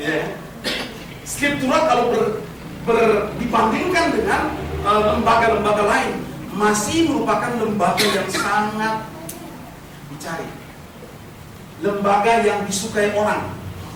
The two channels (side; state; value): both; identical; correlation 1.00